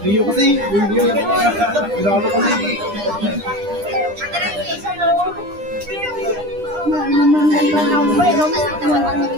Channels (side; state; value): left; late; 9.9 ms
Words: Rio kasi, Rio. Pinalo kasi.